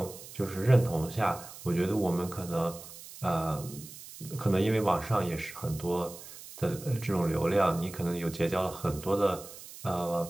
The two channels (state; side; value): noise; right; hiss, 15 dB below the sound